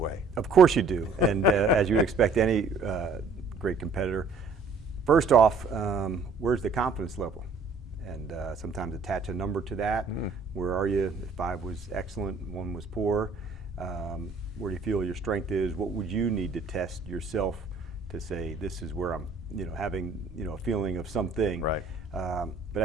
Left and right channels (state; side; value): quieter; left; 4.0 dB